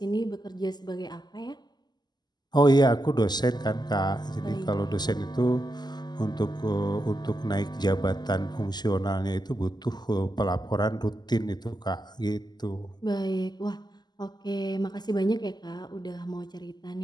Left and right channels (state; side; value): late; right; 0.21 ms